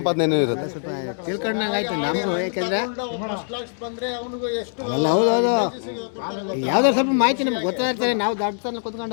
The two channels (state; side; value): silent; right; 63 dB below the other